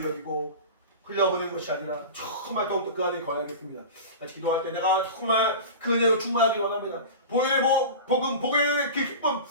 여기고 흘려보낸 것이 아니라 정말 더욱더 그 안에 거하겠습니다. 같이 기도할 때 내가 정말 그 은혜로 충만하기 원합니다. 보혈의 복음, 보혈의 그 기쁨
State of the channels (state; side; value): inverted; both; correlation -0.31